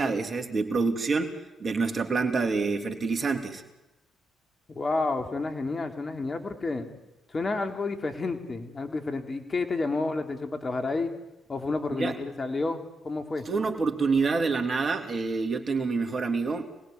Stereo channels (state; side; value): normal; both; correlation 0.85